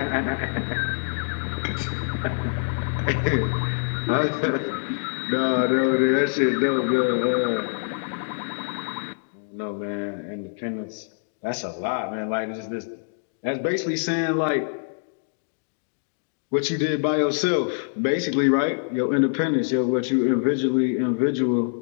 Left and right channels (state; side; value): silent; right; digital silence